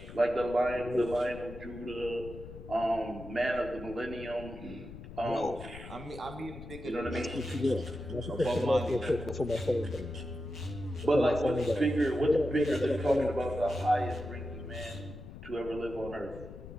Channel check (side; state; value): left; noise; rumble, 13 dB below the sound